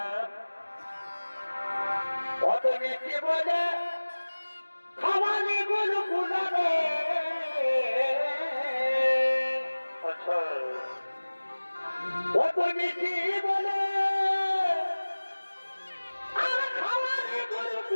অত মিষ্টি বলে খাওয়ানি গুলো গুলাবে অত মিষ্টি বলে আর খাওয়ানি গুলো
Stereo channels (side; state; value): both; inverted; correlation -1.00